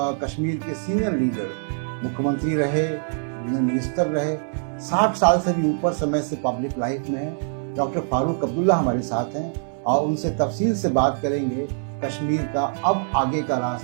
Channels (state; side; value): silent; left; digital silence